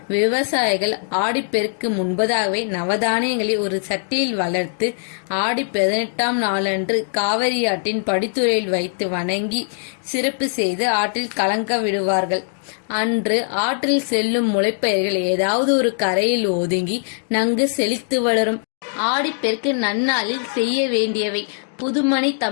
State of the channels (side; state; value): right; silent; digital silence